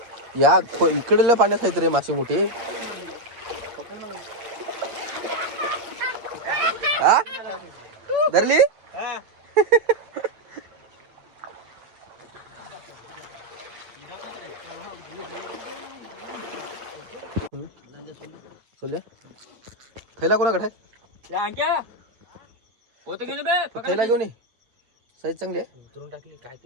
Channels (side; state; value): left; late; 8.8 ms